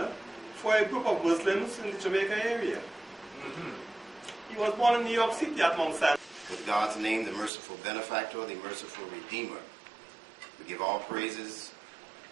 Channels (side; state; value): left; drops out; at 7.5 s